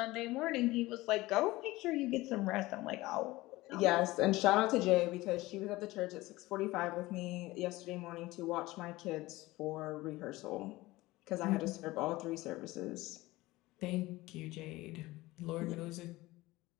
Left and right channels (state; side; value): quieter; right; 19.3 dB